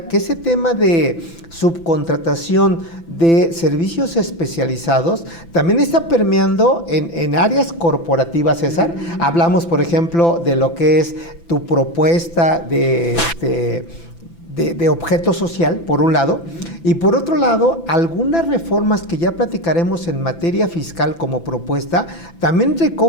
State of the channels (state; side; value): late; right; 5.9 ms